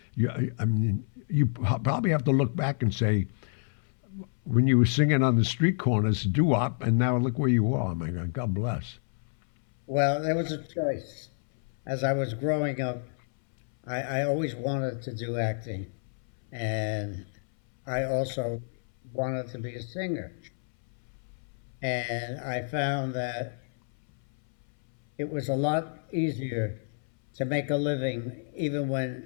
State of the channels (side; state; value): right; silent; 59 dB below the other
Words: you probably have to look back and say, when you were singing on the street corners, doo-wop, and now look where you are. My God, God bless. Well, there was a choice. As I was growing up, I always wanted to do acting, and I also wanted to be a singer. And I found that it was a lot easier to make a living, even